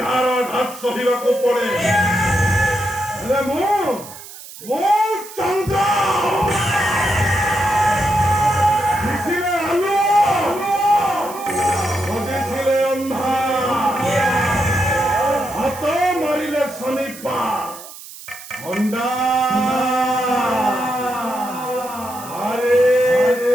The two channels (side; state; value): right; noise; hiss, 15 dB below the sound